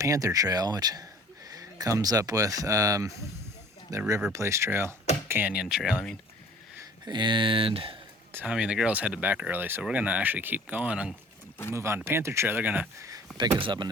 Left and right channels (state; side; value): normal; both; correlation 0.50